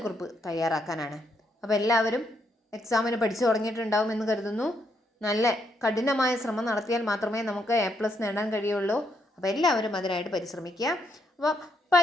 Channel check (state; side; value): normal; both; correlation 0.76